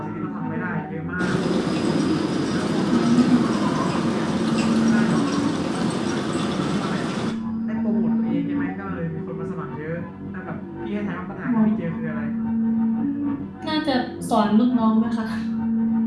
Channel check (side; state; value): both; identical; correlation 1.00